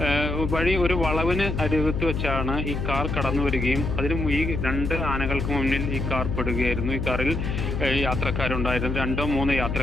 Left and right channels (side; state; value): left; noise; hum, 2 dB below the sound